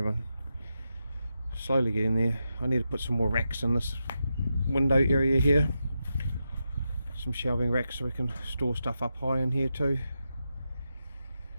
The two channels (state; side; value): inverted; both; correlation -0.88